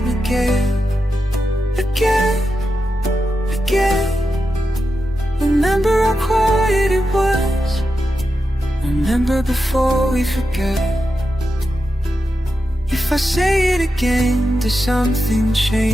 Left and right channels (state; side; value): normal; both; correlation 0.89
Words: again, again, again. Remember how quiet it was. Remember before we forget. If I say it again, does something